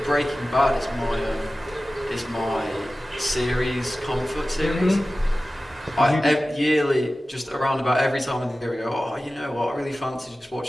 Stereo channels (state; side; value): normal; both; correlation 0.96